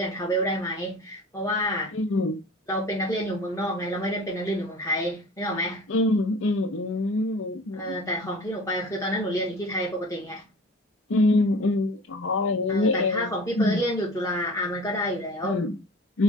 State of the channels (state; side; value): normal; both; correlation 0.40